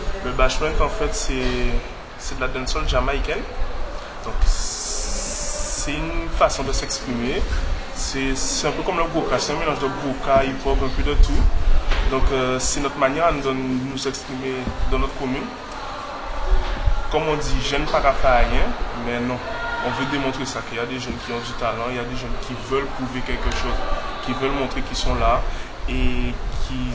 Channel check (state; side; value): identical; both; correlation 1.00